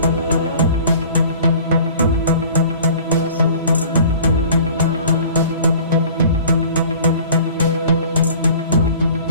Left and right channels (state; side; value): inverted; both; correlation -0.47